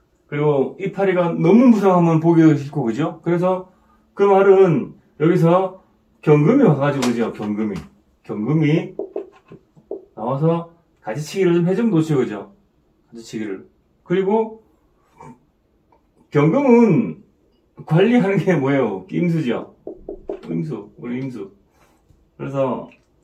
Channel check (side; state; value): both; identical; correlation 1.00